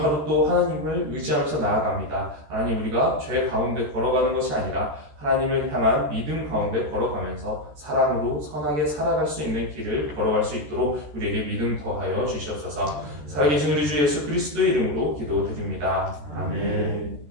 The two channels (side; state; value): left; late; 13 ms